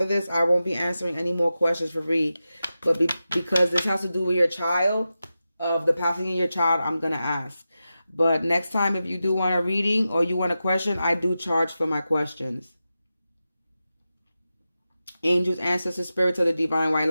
this I won't be answering any more questions for free. But because this has to do with your child, of the passing of your child, I'm gonna ask. But next time, if you do want a reading or you want a question, I do charge for my questions. Angels, ancestors, spirits of the divine white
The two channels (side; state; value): both; inverted; correlation -0.92